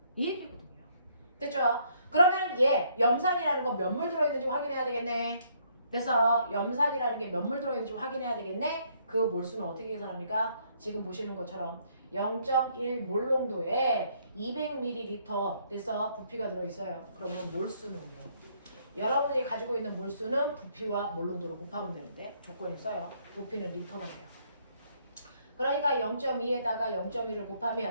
이 얘기거든요. 됐죠? 그러면 얘 염산이라는 거 몇 몰 들어있는지 확인해야 되겠네. 그래서 염산이라는 게 몇 몰 들어있는지 확인해야 되겠네. 그 몰수는 어떻게 계산합니까? 지금 보시는 것처럼 0.1 몰 농도에 200ml 돼서 부피가 들어있어요. 그러면 몰수는요. 여러분들이 가지고 있는 몰수는 부피와 몰 농도를 곱하면 되는데 조건이 있어요. 부피는 리터가 돼요. 그러니까 0.2에다가 0.1을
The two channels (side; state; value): both; inverted; correlation -0.68